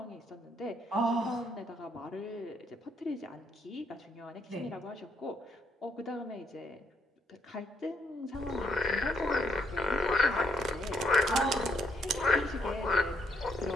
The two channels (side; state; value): both; normal; correlation 0.72